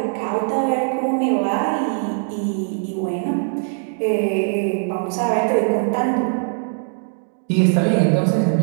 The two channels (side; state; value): left; silent; 65 dB below the other